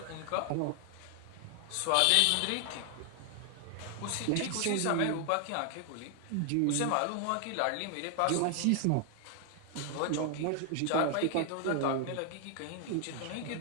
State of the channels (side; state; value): both; different; correlation 0.00